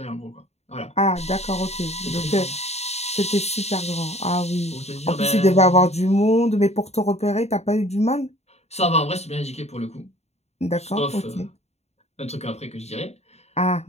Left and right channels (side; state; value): right; late; 0.31 ms